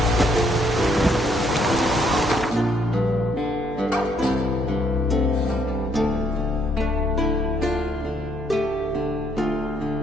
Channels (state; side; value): normal; both; correlation 0.70